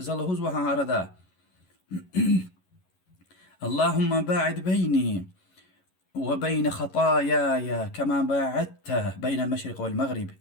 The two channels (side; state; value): right; late; 11 ms